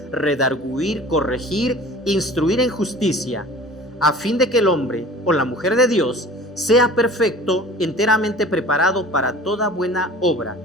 redarguir, corregir, instruir en justicia, a fin de que el hombre o la mujer de Dios sea perfecto, enteramente preparado para toda buena obra.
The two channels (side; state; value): both; normal; correlation 0.43